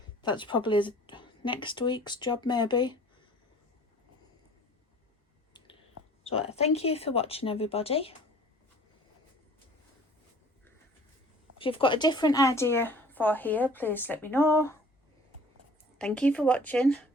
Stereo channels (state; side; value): normal; both; correlation 0.49